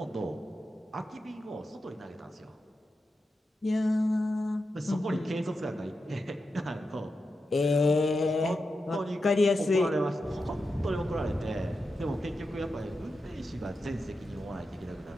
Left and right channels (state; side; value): normal; both; correlation 0.89